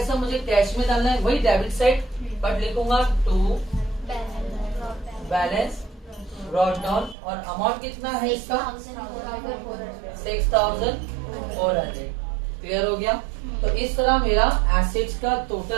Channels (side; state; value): left; drops out; at 7.2 s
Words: मुझे कैश में डालना है, वही डेबिट साइड, बट लिखूंगा टू बैलेंस ब्रॉट डाउन, और अमाउंट कितना है इसका 6,400। क्लियर हो गया। तो इस तरह मेरा एसेट्स का